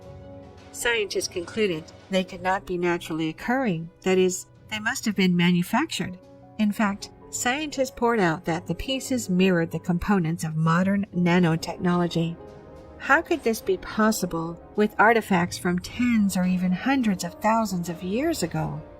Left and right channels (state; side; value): identical; both; correlation 1.00